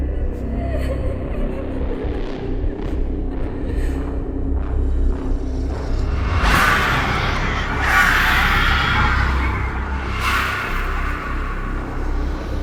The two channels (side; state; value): both; identical; correlation 1.00